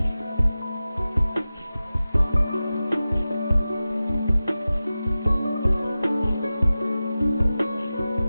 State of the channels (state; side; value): inverted; both; correlation -0.95